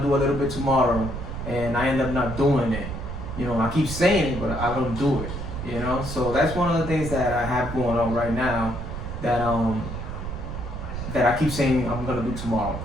and I end up not doing it. I keep saying it, but I don't do it, So that's one of the things that I have going on right now that I keep saying I'm going to do tomorrow,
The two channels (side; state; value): right; noise; rumble, 7 dB below the sound